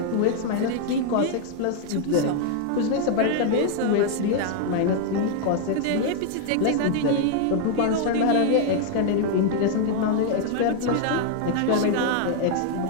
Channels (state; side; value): different; both; correlation 0.00